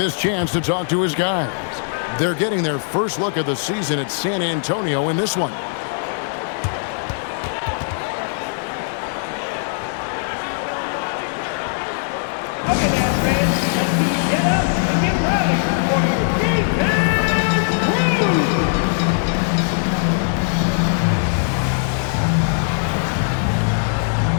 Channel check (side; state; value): right; silent; digital silence